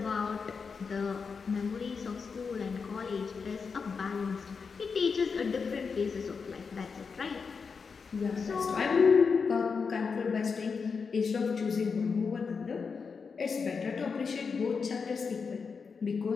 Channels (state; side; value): quieter; right; 5.4 dB